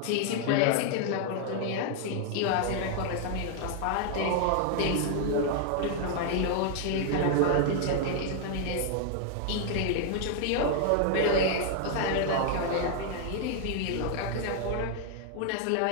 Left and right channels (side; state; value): both; different; correlation 0.00